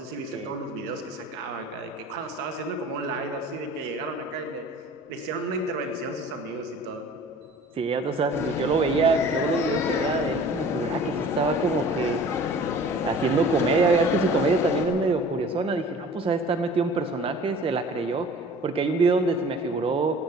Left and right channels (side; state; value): both; normal; correlation 0.46